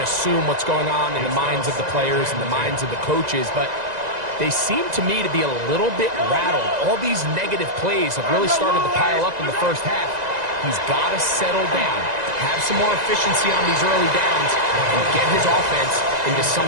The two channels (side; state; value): left; late; 1.9 ms